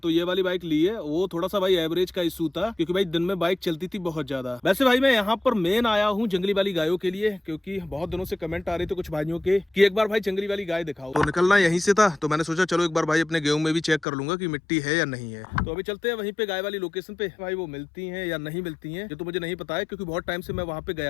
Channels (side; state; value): right; drops out; at 14.1 s